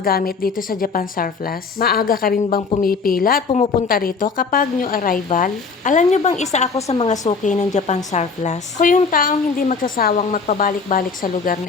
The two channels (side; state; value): right; quieter; 4.9 dB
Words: gamit dito sa Japan Surplus? Maaga ka rin bang pumipila at pumupunta rito kapag new arrival? Alam nyo bang isa ako sa mga suki ng Japan Surplus? Ako yung taong hindi magsasawang magpabalik-balik sa lugar